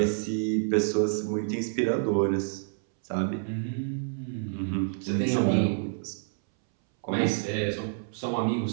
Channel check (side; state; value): left; silent; 59 dB below the other